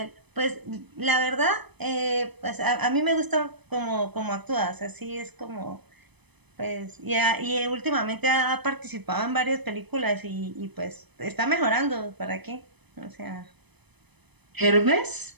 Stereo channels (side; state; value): left; late; 0.99 ms